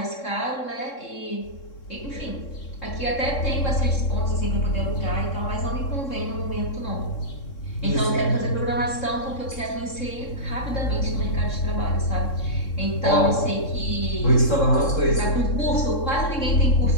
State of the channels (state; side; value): late; right; 3.7 ms